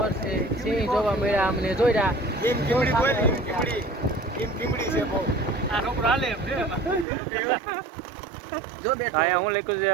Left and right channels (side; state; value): left; drops out; at 7.1 s